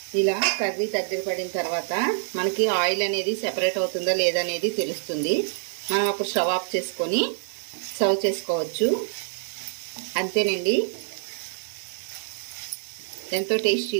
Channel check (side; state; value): left; silent; digital silence